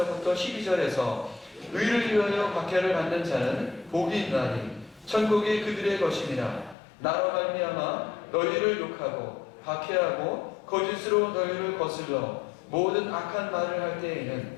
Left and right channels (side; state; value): right; drops out; at 6.8 s